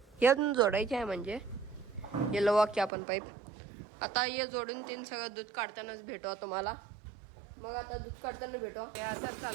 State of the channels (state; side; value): drops out; left; at 2.9 s